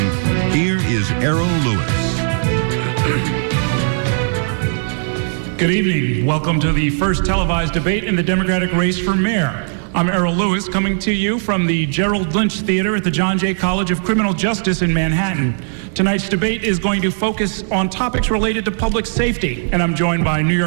here is Errol Lewis. Good evening. Welcome to the first televised debate in the Democratic race for mayor. I'm Errol Lewis, coming to you from the Gerald Lynch Theater at the John Jay College of Criminal Justice in Manhattan. Tonight's debate is going to focus on topics related to public safety, and I'm joined by New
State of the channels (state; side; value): silent; left; digital silence